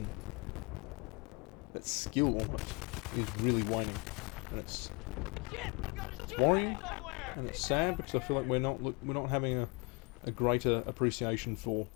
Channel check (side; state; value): right; quieter; 29.7 dB